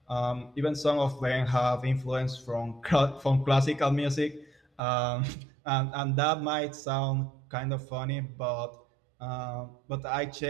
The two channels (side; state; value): left; drops out; at 4.8 s